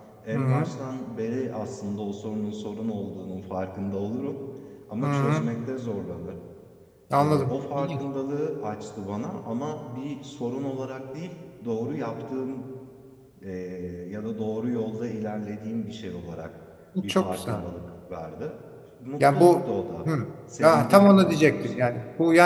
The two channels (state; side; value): identical; both; correlation 1.00